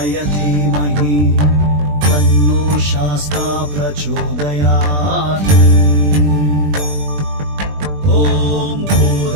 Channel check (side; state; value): left; late; 20 ms